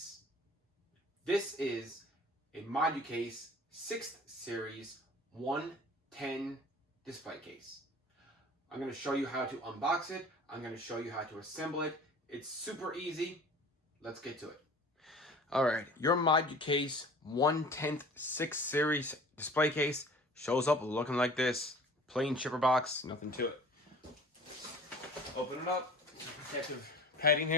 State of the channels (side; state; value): both; normal; correlation 0.45